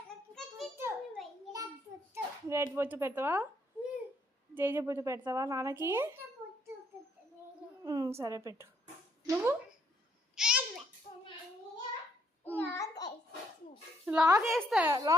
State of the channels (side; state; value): both; normal; correlation 0.69